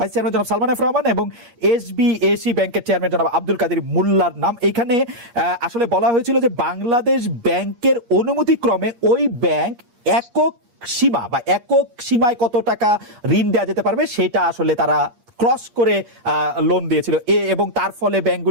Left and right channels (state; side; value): late; left; 8.4 ms